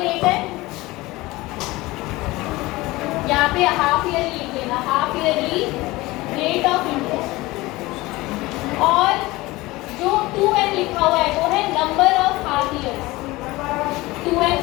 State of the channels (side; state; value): right; quieter; 20.2 dB